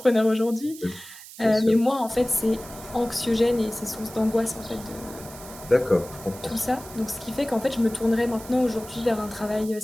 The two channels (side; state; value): right; noise; hiss, 16 dB below the sound